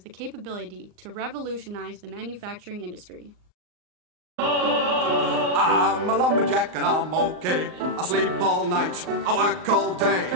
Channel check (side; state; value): left; late; 38 ms